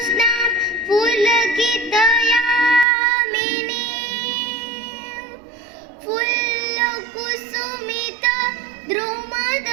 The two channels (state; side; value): drops out; left; at 2.9 s